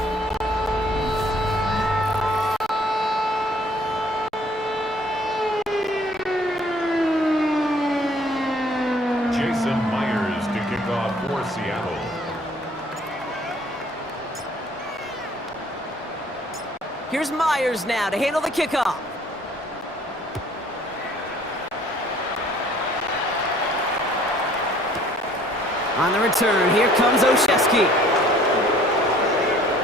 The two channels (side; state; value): both; normal; correlation 0.57